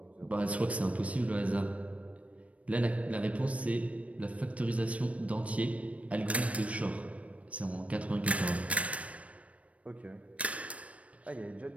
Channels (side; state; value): left; late; 0.065 ms